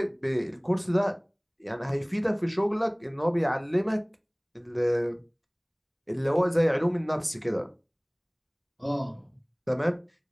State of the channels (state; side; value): identical; both; correlation 1.00